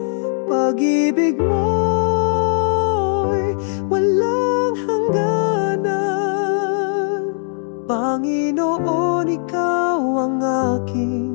Pag-ibig mo'y walang hangganan. Panginoon, ikaw ang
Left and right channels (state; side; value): silent; right; digital silence